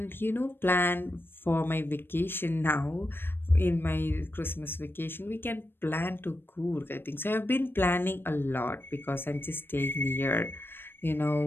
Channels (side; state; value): right; late; 0.10 ms